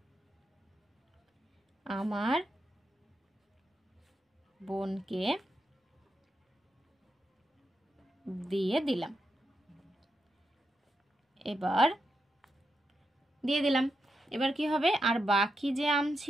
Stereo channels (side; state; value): both; normal; correlation 0.85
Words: আমার বোনকে দিয়ে দিলাম। এবার দিয়ে দিলাম, এবার কি হবে, আর বাকি যে আম